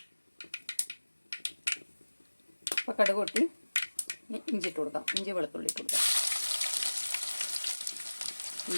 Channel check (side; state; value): both; inverted; correlation -1.00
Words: അപ്പോൾ കടുക് പൊട്ടി ഇഞ്ചി ഇട്ട് കൊടുക്കാം. ഇഞ്ചി വെളുത്തുള്ളി ഇട്ട് കൊടുക്കാം.